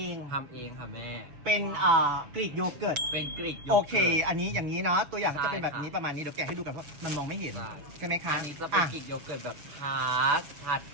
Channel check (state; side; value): late; left; 7.0 ms